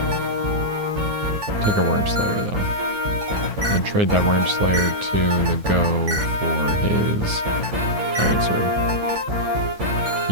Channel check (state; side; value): late; left; 9.6 ms